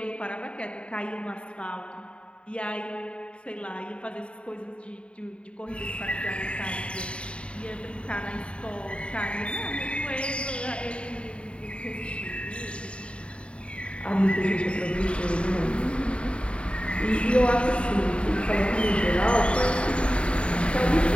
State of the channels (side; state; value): right; late; 0.058 ms